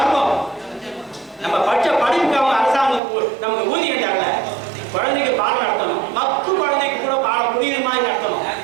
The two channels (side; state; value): left; drops out; at 3.0 s